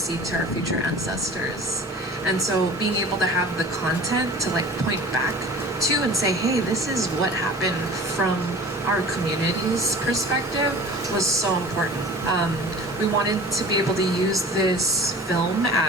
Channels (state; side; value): normal; both; correlation 0.41